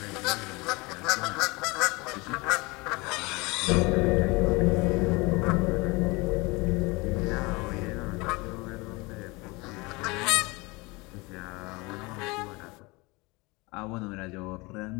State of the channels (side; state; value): right; quieter; 25.2 dB